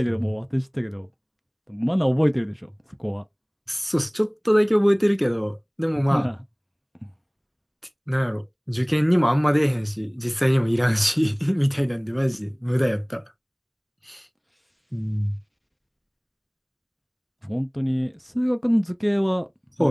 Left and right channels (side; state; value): both; identical; correlation 1.00